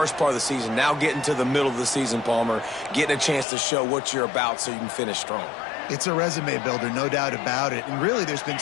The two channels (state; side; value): drops out; right; at 3.5 s